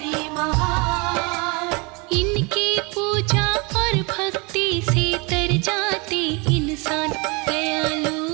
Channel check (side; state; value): left; quieter; 29.1 dB